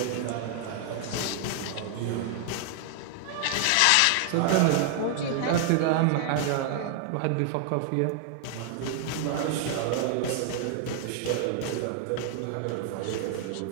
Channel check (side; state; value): both; different; correlation 0.00